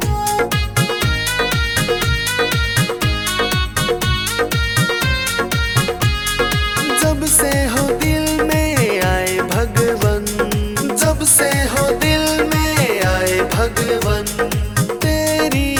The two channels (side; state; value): both; identical; correlation 1.00